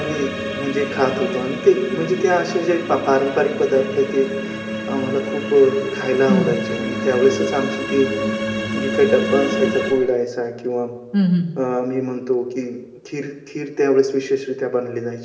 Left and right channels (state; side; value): identical; both; correlation 1.00